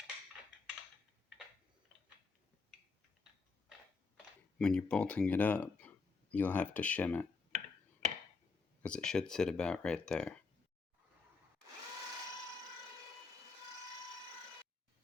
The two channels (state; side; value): quieter; right; 4.3 dB